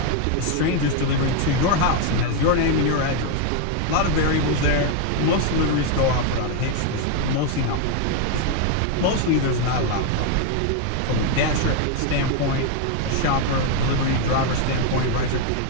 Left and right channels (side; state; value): both; different; correlation 0.01